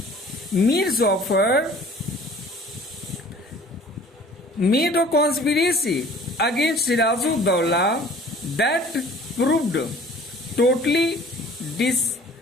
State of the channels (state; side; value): normal; both; correlation 0.49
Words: Mir Jafar made a conspiracy against Sirajuddaulah that proved totally